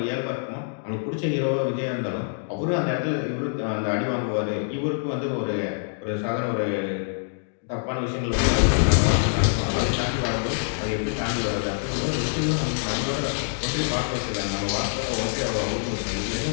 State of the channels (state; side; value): silent; right; digital silence